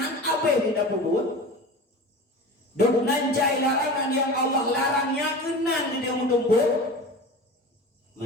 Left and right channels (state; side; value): normal; both; correlation 0.33